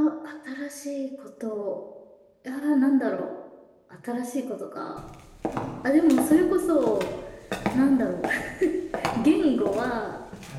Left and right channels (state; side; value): identical; both; correlation 1.00